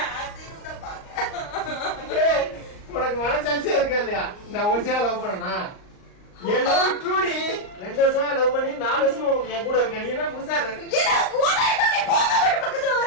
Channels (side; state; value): right; late; 38 ms